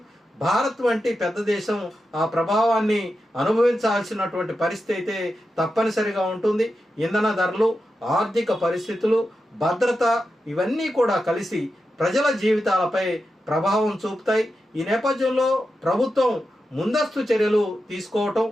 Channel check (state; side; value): normal; both; correlation 0.89